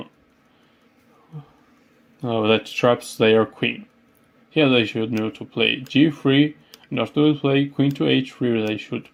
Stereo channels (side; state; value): both; identical; correlation 1.00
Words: that traps their queen. Here they should know to play g3, and after they play queen to h3, they should